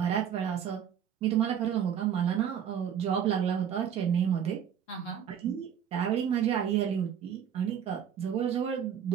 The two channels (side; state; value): left; quieter; 8.8 dB